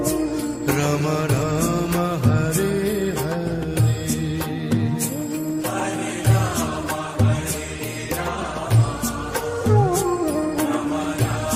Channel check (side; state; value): both; identical; correlation 1.00